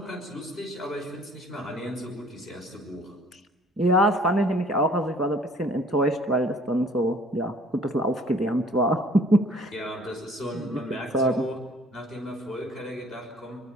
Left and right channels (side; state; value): both; normal; correlation 0.54